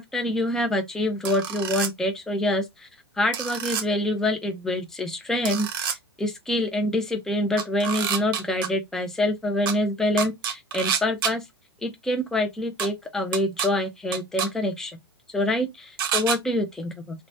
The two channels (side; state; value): both; normal; correlation 0.49